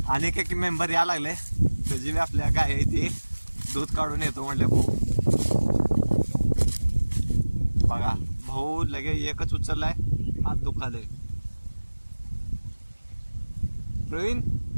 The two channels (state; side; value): inverted; both; correlation -1.00